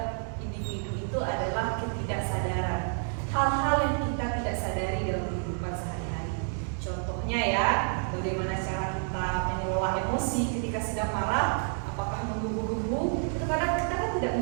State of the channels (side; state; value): left; silent; 58 dB below the other